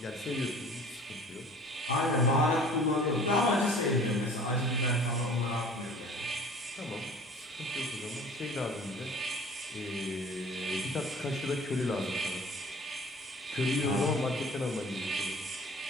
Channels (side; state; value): both; normal; correlation 0.47